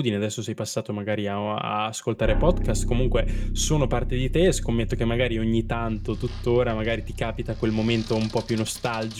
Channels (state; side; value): identical; both; correlation 1.00